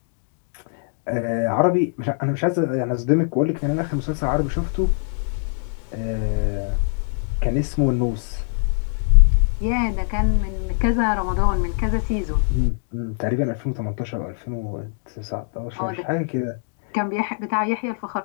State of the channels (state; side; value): silent; right; 64 dB below the other